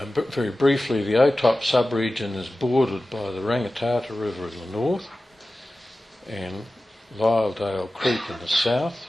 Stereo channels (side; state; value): both; normal; correlation 0.95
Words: briefly, the OTOP sub-region is bordered by the Rangitata River in the north and Lyledale Creek in the south.